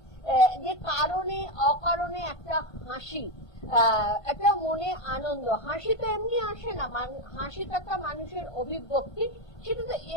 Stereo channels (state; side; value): late; right; 1.5 ms